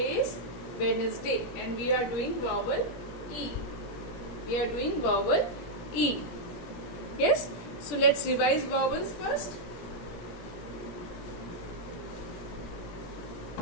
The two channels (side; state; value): right; late; 17 ms